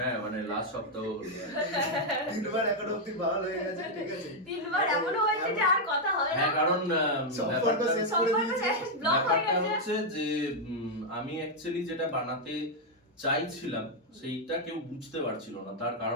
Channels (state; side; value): normal; both; correlation -0.01